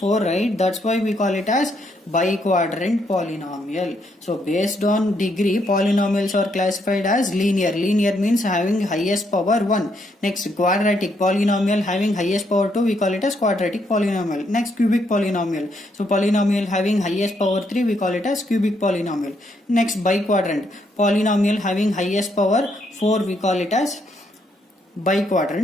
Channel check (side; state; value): both; normal; correlation 0.75